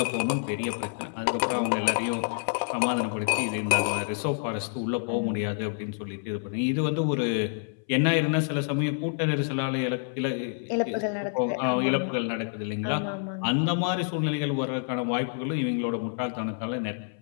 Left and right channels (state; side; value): silent; right; 59 dB below the other